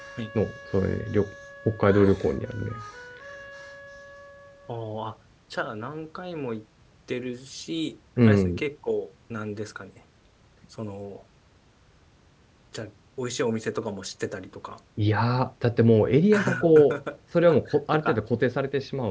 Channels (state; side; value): identical; both; correlation 1.00